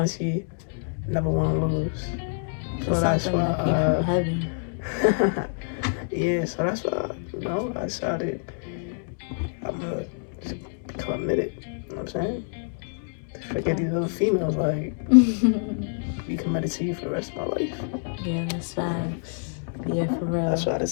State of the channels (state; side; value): silent; right; digital silence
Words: never want to lose. So that's why yeah, so that's why, I decided I'm going to become committed. You know what I'm saying? Forget these other females, like, be committed to you for the rest of my life. Yeah, that's facts. Yeah, for real. That's what I